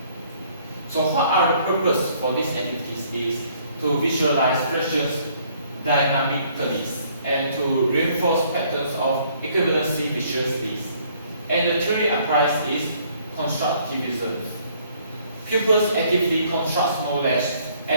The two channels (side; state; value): both; inverted; correlation -0.63